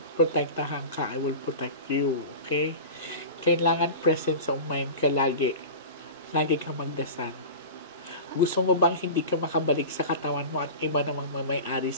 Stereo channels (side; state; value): both; inverted; correlation -0.31